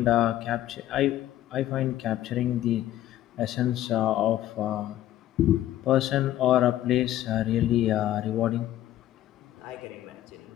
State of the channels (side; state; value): right; quieter; 13.3 dB